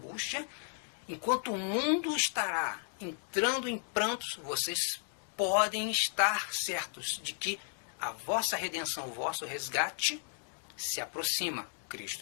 enquanto o mundo estará entrando em prantos, vocês podem estar certos de que a vossa redenção, o vosso resgate se aproxima. Cristo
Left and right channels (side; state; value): right; silent; 55 dB below the other